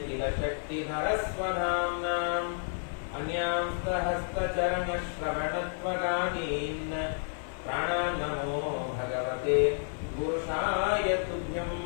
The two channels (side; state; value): right; silent; digital silence